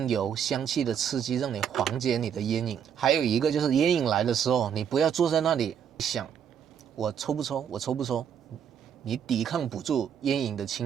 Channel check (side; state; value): left; quieter; 8.2 dB